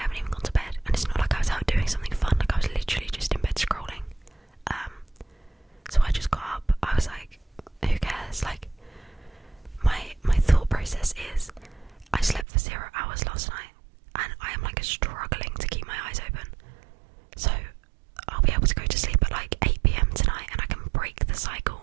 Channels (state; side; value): drops out; left; at 12.5 s